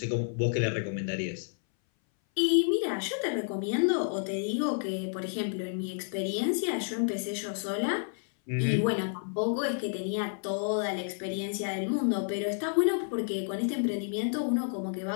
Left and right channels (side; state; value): right; silent; 58 dB below the other